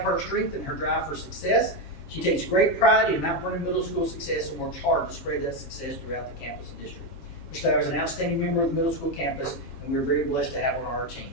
her strength and her drive for success. She takes great pride in Mount Vernon Middle School success and works hard to spread that success throughout the campus and district. Ms. Lowry is an outstanding member of the middle school campus, and we're very blessed to have her on our team.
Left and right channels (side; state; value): right; late; 7.3 ms